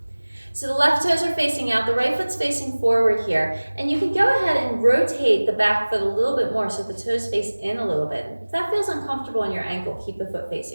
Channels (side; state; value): both; inverted; correlation -1.00